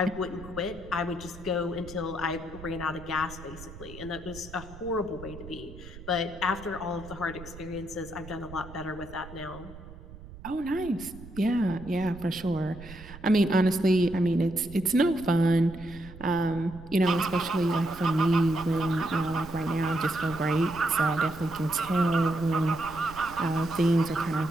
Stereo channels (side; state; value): right; noise; rumble, 16 dB below the sound